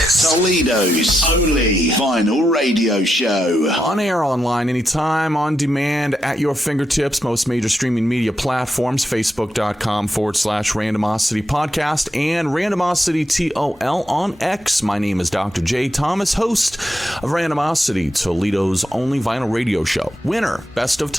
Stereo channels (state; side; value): normal; both; correlation 0.84